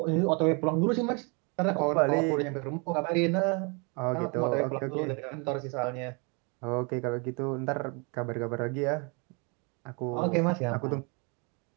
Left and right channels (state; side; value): quieter; left; 33.0 dB